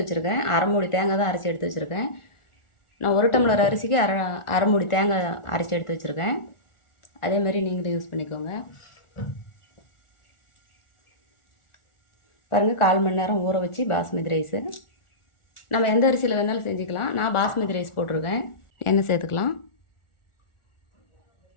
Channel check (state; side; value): late; right; 1.4 ms